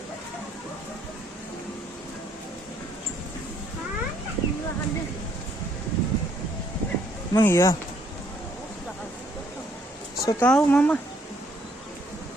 Emang iya? So tahu mama.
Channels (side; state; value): both; normal; correlation 0.67